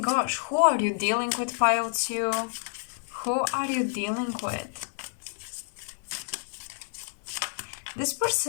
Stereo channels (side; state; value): right; silent; digital silence